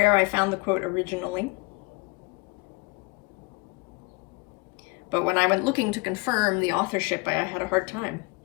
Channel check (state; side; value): quieter; right; 27.7 dB